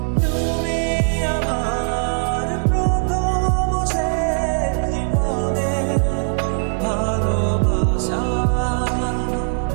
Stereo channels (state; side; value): silent; left; 58 dB below the other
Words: তুমি আমার প্রথম শেষ জীবনের ভালোবাসা।